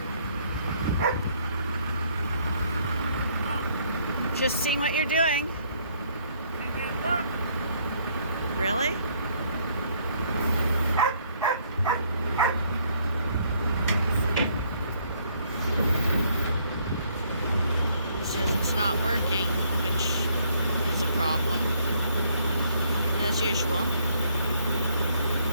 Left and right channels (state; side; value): inverted; both; correlation -0.67